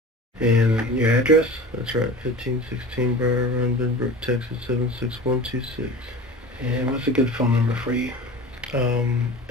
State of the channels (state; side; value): normal; both; correlation 0.35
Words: And your address? That's right, 1516 Briar Run, Benbrook, Texas, 76126. And what's a good phone number for you?